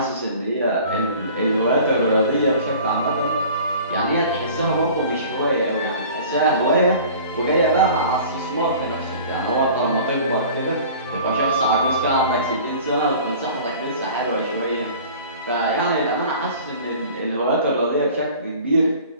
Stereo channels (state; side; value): inverted; both; correlation -0.45